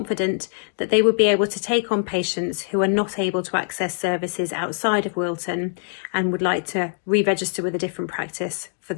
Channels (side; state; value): right; silent; digital silence